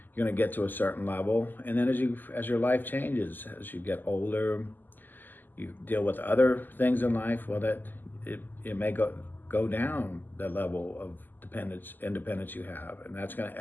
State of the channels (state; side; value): late; right; 0.088 ms